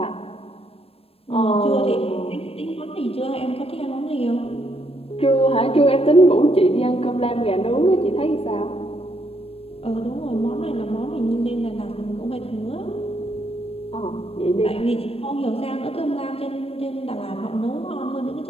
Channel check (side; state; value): right; late; 0.28 ms